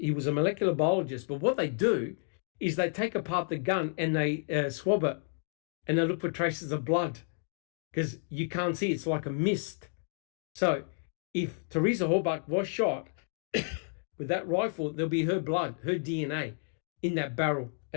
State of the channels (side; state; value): right; silent; 57 dB below the other